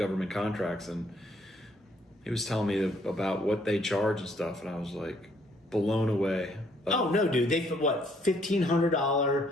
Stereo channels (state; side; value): normal; both; correlation 0.67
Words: contracts, and he was telling me about what they charge and stuff, and I was like blown away Oh no, dude! They what